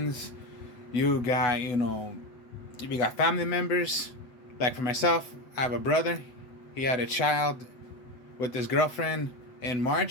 you got family members. Like for myself, I have a brother. He had a child with his girlfriend in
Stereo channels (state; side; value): late; right; 8.0 ms